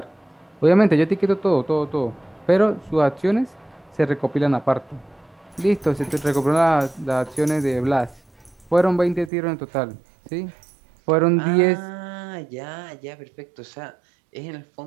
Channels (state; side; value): drops out; left; at 9.3 s